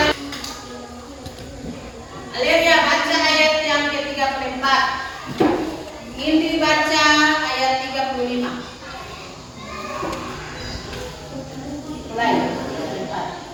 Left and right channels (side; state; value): both; identical; correlation 1.00